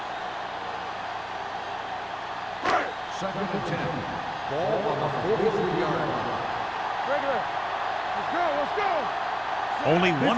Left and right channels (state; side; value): identical; both; correlation 1.00